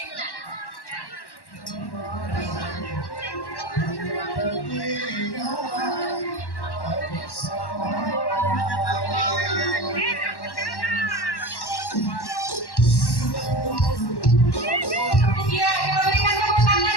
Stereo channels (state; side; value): late; right; 1.1 ms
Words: kita berikan tepuk